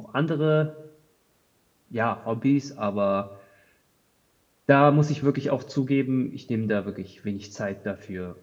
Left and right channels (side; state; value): both; identical; correlation 1.00